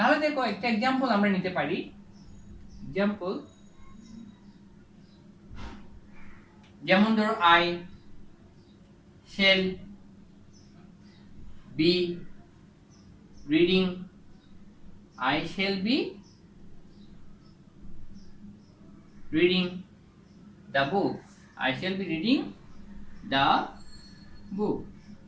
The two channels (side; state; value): both; identical; correlation 1.00